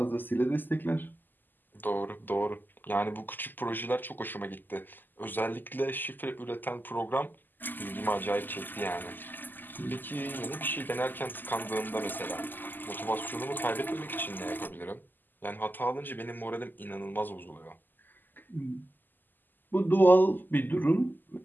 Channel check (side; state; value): right; late; 0.089 ms